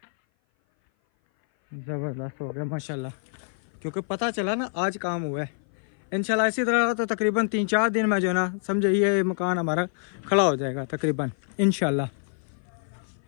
ज़बरदस्त हो गया माशाल्लाह, क्योंकि पता चला ना आज काम हुआ है। इंशाल्लाह इसी तरह तो तकरीबन 3-4 दिन में जो है ना समझे ये मकान हमारा खड़ा हो जाएगा तकरीबन इंशाल्लाह।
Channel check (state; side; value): silent; right; 57 dB below the other